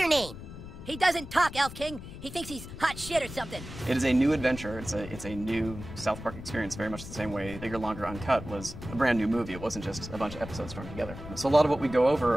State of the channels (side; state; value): left; noise; rumble, 12 dB below the sound